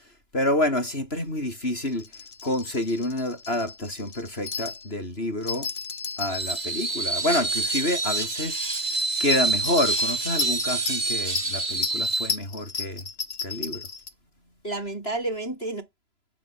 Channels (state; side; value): late; right; 3.0 ms